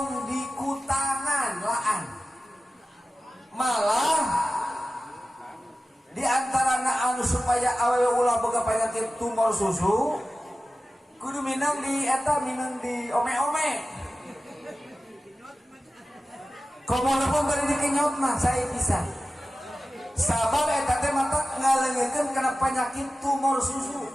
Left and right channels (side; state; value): both; normal; correlation 0.95